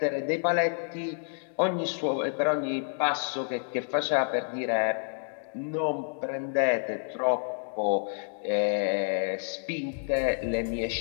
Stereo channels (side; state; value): right; silent; digital silence